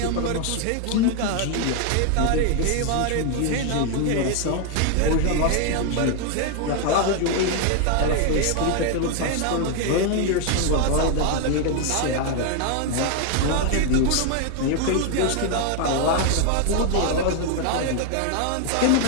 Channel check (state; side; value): different; both; correlation 0.00